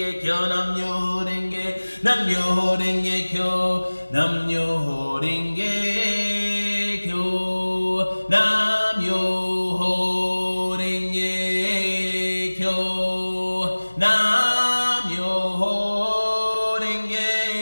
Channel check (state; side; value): inverted; both; correlation -1.00